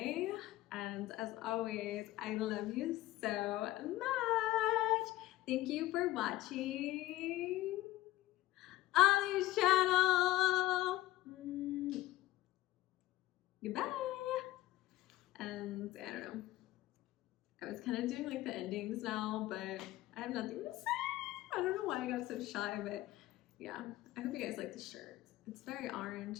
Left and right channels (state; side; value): quieter; right; 16.5 dB